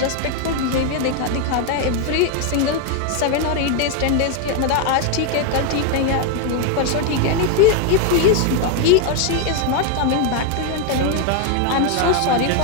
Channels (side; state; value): both; different; correlation 0.01